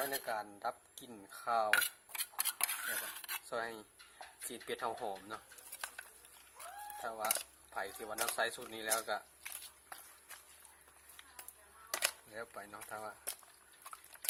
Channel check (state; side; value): identical; both; correlation 1.00